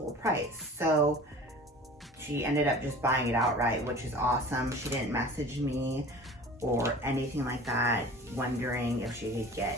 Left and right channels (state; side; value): normal; both; correlation 0.41